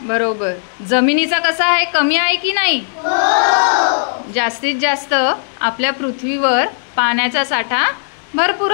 बरोबर. जमिनीचा कसा आहे? कमी आहे की नाही? जास्तीत जास्त आपल्या पृथ्वीवर पाण्याचा साठा भरपूर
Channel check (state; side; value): silent; right; digital silence